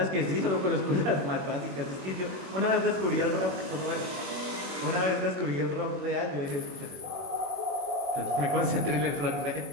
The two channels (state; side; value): late; left; 21 ms